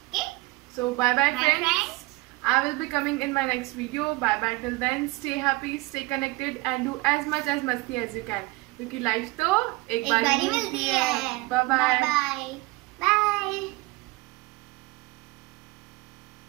Okay? So bye friends. I will be coming in my next video. Bye till then. Stay happy, stay connected and do as much as मस्ती as you can. क्योंकि लाइफ तो एक बार ही मिलती है. Bye.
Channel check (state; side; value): quieter; left; 22.3 dB